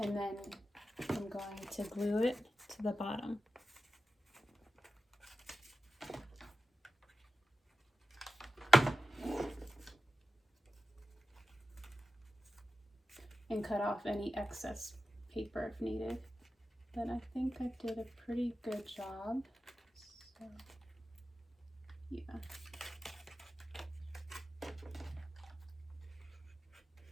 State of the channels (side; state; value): both; normal; correlation 0.92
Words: then I'm going to glue it to the bottom. And cut off any excess paper if needed. But I think I did a pretty good job. So, yeah.